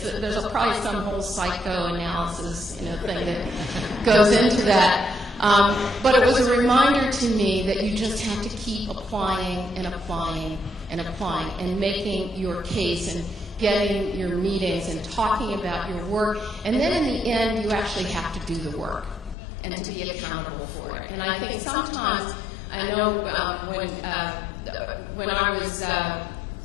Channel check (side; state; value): right; drops out; at 19.4 s